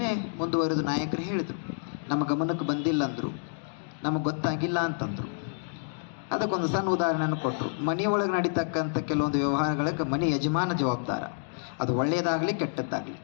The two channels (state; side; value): silent; right; digital silence